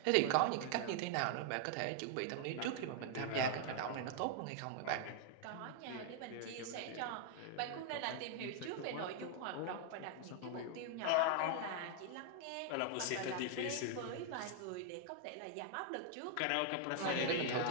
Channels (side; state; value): both; different; correlation 0.00